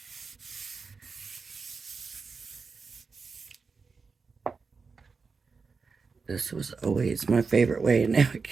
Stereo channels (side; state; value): left; quieter; 4.8 dB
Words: This was always my favorite way, and now I